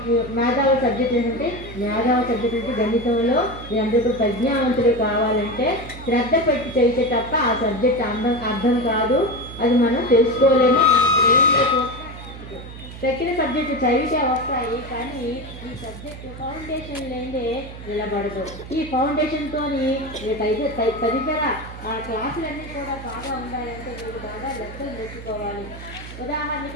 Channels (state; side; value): noise; right; hum, 13 dB below the sound